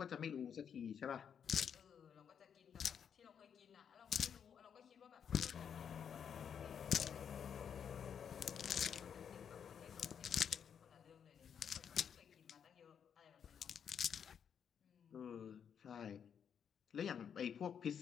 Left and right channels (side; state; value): right; quieter; 7.8 dB